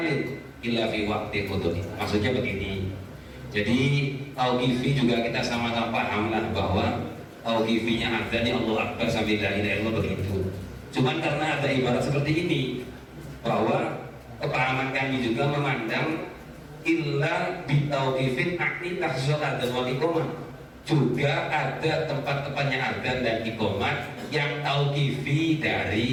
illa fi waqti qudri. Maksudnya begini. Jadi tauqifi juga kita sama-sama paham lah bahwa tauqifinya adzan ya Allah Akbar sambil la ilaha illallah begitu. Cuman karena ada ibarat seperti ini bahwa kepahaman kami juga memandang illa bitauqifin akni takhsisul adzan wal iqamah, juga ada tempat-tempatnya adzan dan iqamat yang tauqifi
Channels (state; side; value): identical; both; correlation 1.00